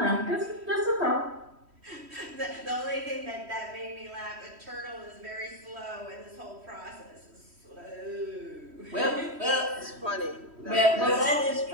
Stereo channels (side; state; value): left; late; 3.1 ms